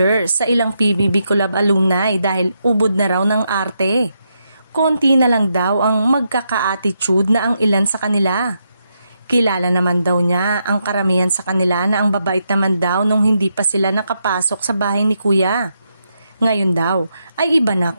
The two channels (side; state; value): both; inverted; correlation -0.82